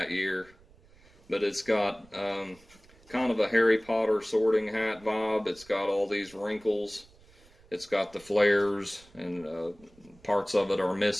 year. But it's got kind of a Harry Potter sorting hat vibe. It's got all these wrinkles. It's got the flares, and parts of it are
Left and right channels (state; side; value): noise; right; rumble, 27 dB below the sound